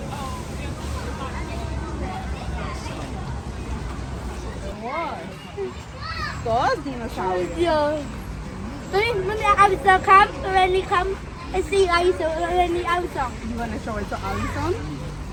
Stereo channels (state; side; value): identical; both; correlation 1.00